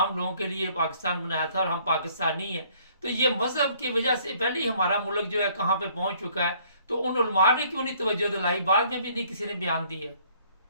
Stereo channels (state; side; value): inverted; both; correlation -0.61